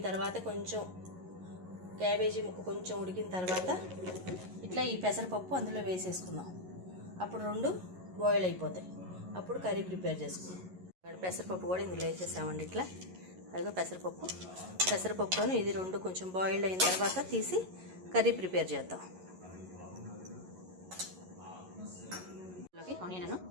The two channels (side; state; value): left; late; 11 ms